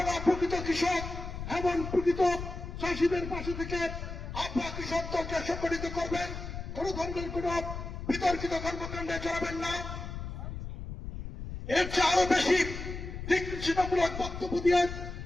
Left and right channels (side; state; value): left; noise; rumble, 8 dB below the sound